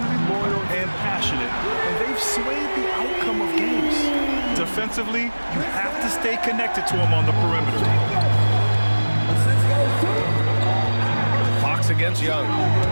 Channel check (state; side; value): inverted; both; correlation -1.00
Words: loyal and passionate, and they've swayed the outcome of games. Defensively, you have to stay connected to them on the perimeter. Fox against Young.